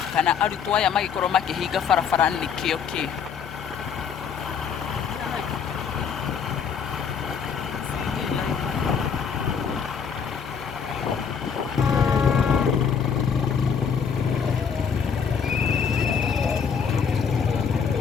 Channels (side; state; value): right; quieter; 6.6 dB